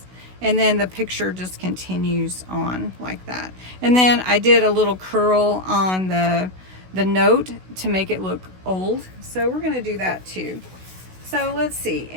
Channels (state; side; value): late; left; 16 ms